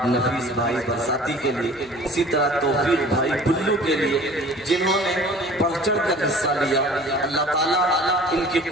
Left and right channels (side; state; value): left; noise; hum, 25 dB below the sound